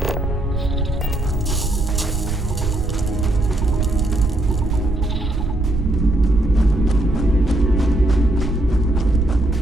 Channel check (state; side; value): noise; right; rumble, 4 dB below the sound